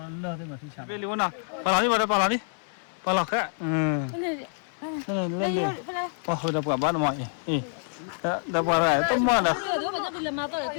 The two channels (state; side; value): silent; right; 58 dB below the other